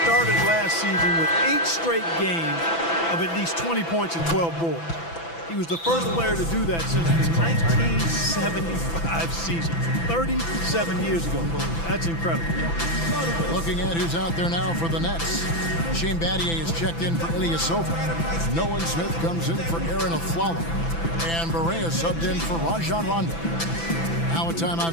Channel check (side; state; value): right; late; 6.0 ms